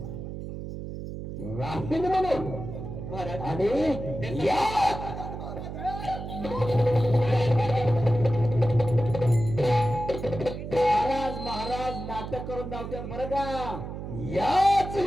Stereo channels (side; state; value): right; noise; hum, 8 dB below the sound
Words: राहीन म्हणून. महाराज आणि या महाराज महाराज नाटक करून धावतात बरं का. याच